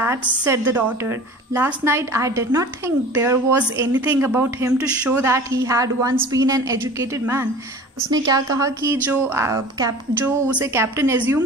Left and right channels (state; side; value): normal; both; correlation 0.40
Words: said the daughter. Last night I did not think there was anything about him to show that he had once been an educated man. उसने क्या कहा कि जो उसे captain